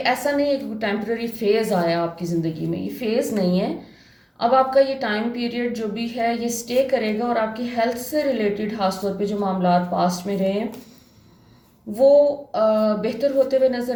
नहीं है कि टेम्पररी फेज़ आया आपकी ज़िंदगी में, ये फेज़ नहीं है। अब आपका ये टाइम पीरियड जो भी है ये स्टे करेगा और आपकी हेल्थ से रिलेटेड खासतौर पे जो मामला पास्ट में रहे हैं वो बेहतर होते हुए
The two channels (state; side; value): identical; both; correlation 1.00